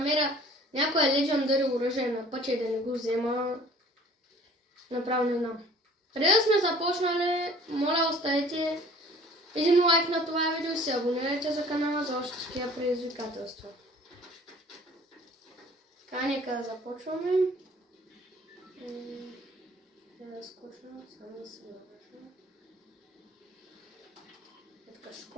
някое Legendary оръжие на пътя и да не го взема, направо не знам. Преди да сме започнали, моля оставете един лайк на това видео и се абонирайте за канала за още такива предизвикателства. Така, нека да започваме. Да скочвам, само да се навържа. Така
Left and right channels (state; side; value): normal; both; correlation 0.51